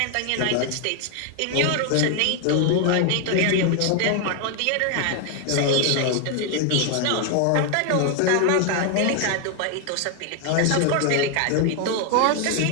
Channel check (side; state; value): both; different; correlation 0.00